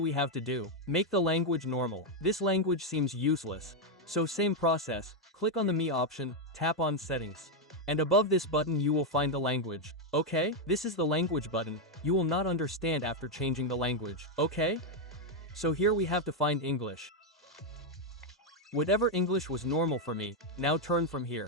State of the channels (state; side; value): normal; both; correlation 0.02